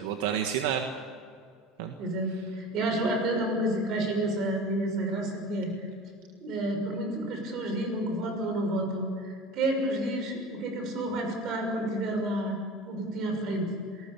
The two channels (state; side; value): normal; both; correlation 0.35